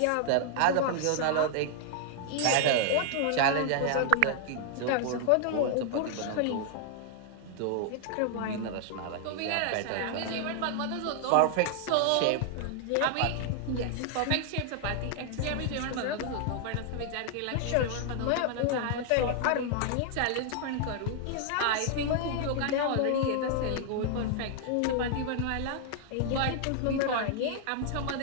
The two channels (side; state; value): both; different; correlation 0.00